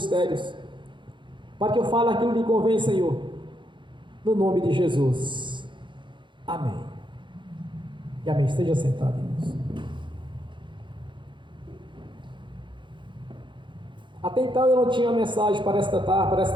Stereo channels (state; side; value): late; left; 0.23 ms